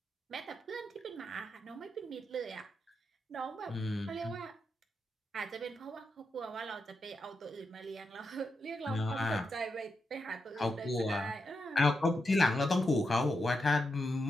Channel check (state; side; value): normal; both; correlation 0.86